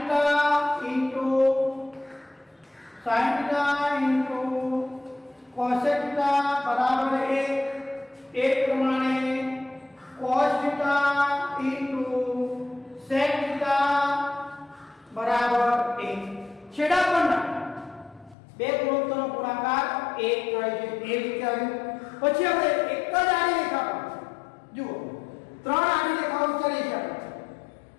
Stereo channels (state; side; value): drops out; right; at 18.4 s